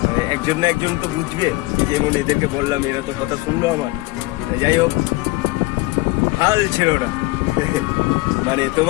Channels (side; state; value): right; quieter; 22.2 dB